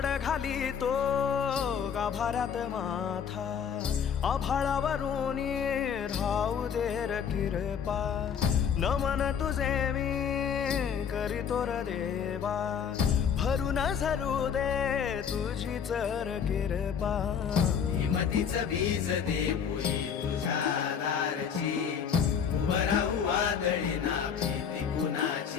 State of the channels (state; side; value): quieter; right; 7.4 dB